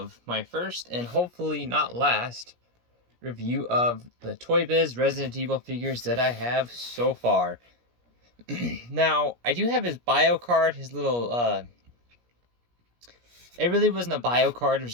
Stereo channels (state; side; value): late; left; 17 ms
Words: my first and hopefully not last review of the toybiz Resident Evil figures that I have so far. Now, I do have his bio card, his little, it really wasn't a bio card, it